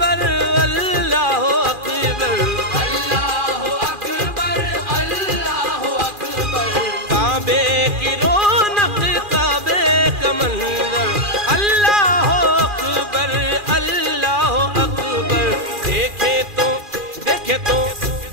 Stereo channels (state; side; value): late; left; 2.4 ms